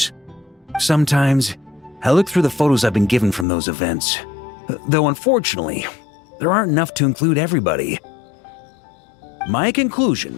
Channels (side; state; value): right; drops out; at 3.5 s